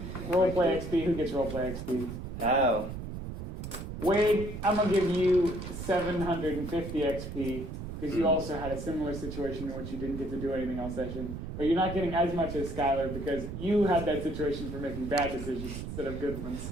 roleplay XP. Who gets roleplay XP? Oh. Wade, I'm gonna give you 750 XP because you also had a similar situation in which you didn't get to do anything all session. But you're not getting as much as Schuyler because you had that situation for making bad decisions instead of good ones.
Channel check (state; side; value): noise; right; rumble, 7 dB below the sound